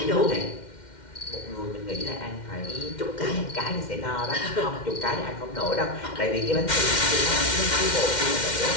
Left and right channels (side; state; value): right; late; 2.1 ms